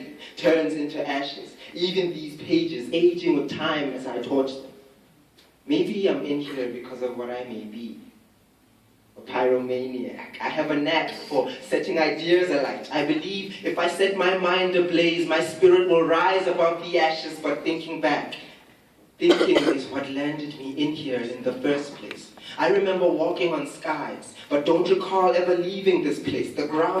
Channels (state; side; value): identical; both; correlation 1.00